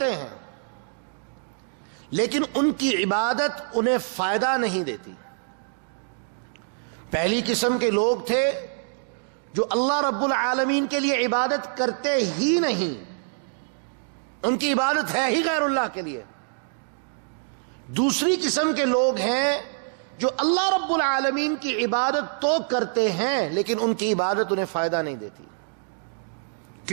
ہیں لیکن ان کی عبادت انہیں فائدہ نہیں دیتی. پہلی قسم کے لوگ تھے جو اللہ رب العالمین کے لیے عبادت کرتے ہی نہیں، ان کی عبادت ہے ہی غیر اللہ کے لیے. دوسری قسم کے لوگ ہیں جو اللہ رب العالمین کی عبادت تو کرتے ہیں لیکن ان کی عبادت انہیں فائدہ نہیں دیتی.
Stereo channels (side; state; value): left; silent; digital silence